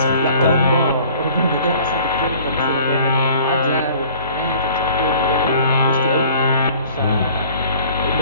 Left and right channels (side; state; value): both; inverted; correlation -0.51